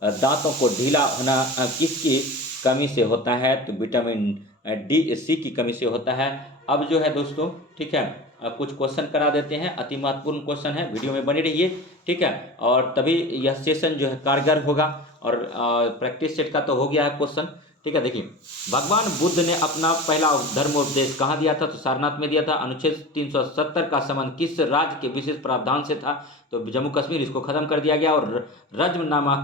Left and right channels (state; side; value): normal; both; correlation 0.33